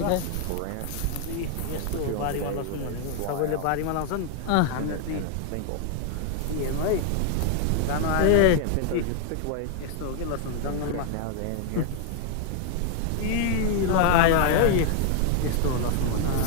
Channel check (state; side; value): different; both; correlation 0.00